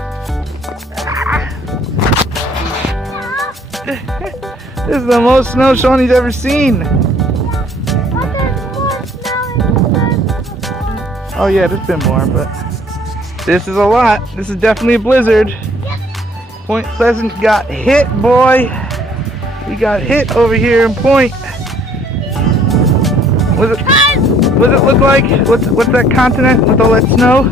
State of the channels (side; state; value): both; normal; correlation 0.60